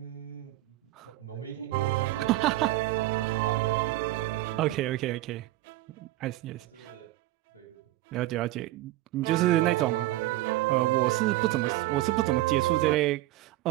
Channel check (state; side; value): quieter; left; 16.8 dB